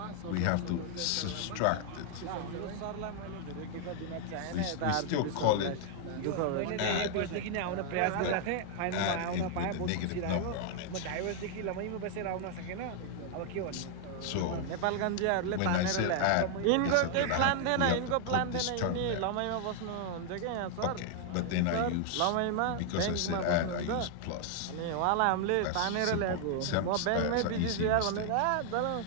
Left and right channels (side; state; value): both; different; correlation 0.00